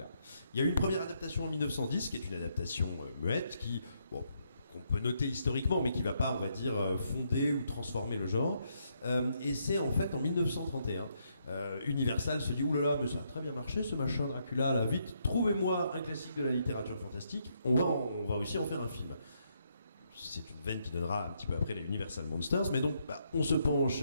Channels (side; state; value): both; inverted; correlation -0.76